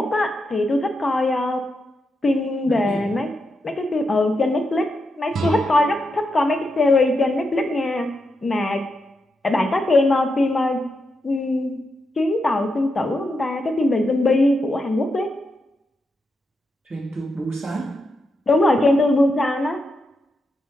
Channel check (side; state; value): both; normal; correlation 0.85